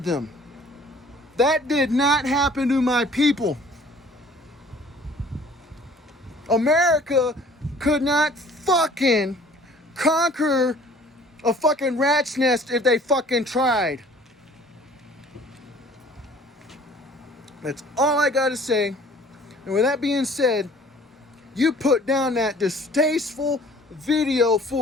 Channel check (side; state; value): both; normal; correlation 0.52